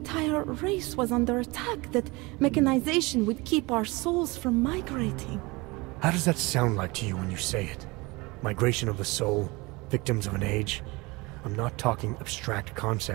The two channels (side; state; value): left; quieter; 24.3 dB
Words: race was under attack, that mechanization would keep our souls from migrating. How does that sound like to you when you say it? Migration of the soul, victims of an age. I'm not talking abstract